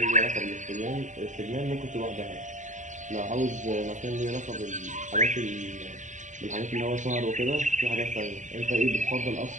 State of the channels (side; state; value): left; late; 0.36 ms